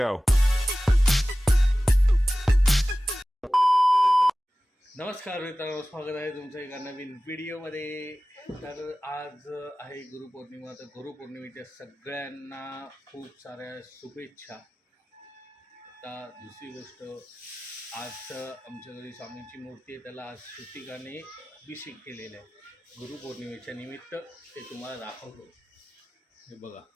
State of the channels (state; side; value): normal; both; correlation 0.96